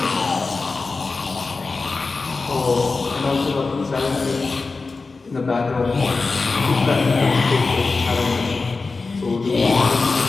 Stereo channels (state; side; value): quieter; right; 4.0 dB